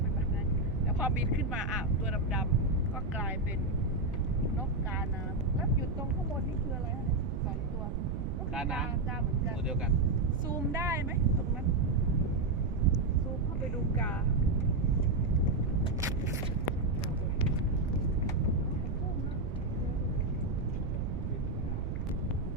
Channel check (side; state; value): right; noise; rumble, 4 dB below the sound